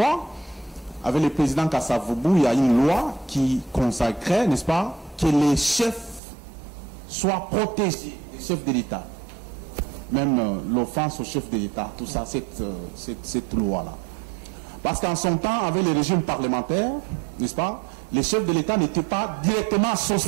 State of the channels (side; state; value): left; drops out; at 6.2 s